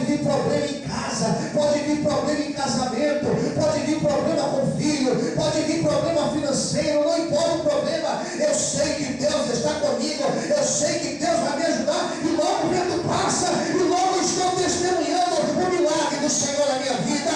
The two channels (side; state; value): both; identical; correlation 1.00